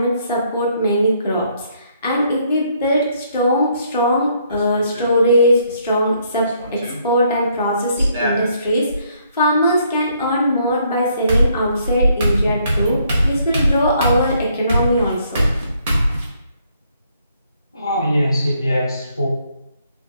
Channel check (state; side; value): inverted; both; correlation -0.69